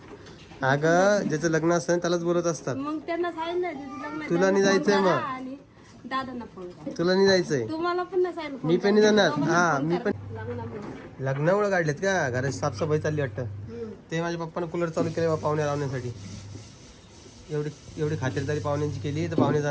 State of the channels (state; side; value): identical; both; correlation 1.00